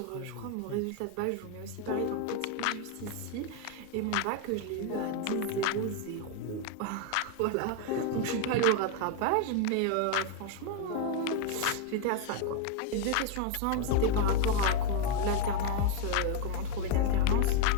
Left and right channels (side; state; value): both; different; correlation 0.01